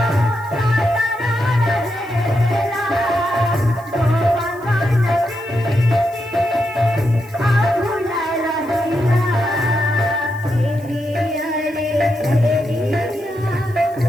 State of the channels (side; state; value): left; noise; hiss, 27 dB below the sound